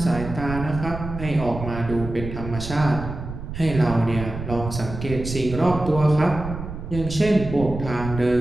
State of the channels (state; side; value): noise; right; rumble, 8 dB below the sound